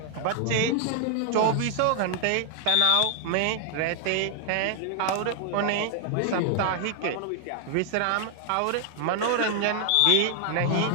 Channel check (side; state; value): both; different; correlation 0.00